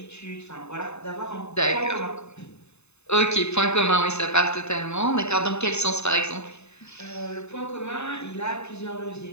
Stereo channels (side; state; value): right; late; 0.81 ms